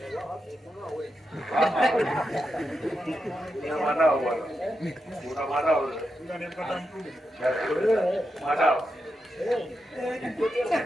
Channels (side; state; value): both; normal; correlation 0.86